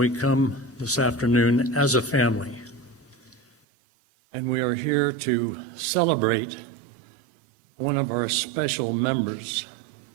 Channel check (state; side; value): drops out; left; at 3.5 s